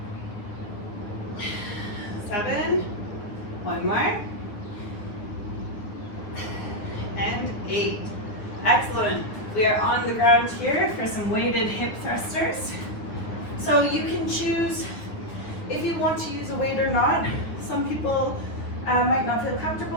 Excellent. We are on the ground here for some weighted hip thrusters. So you can choose if you want to use a weight or not. Some people might not feel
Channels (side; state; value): right; late; 9.7 ms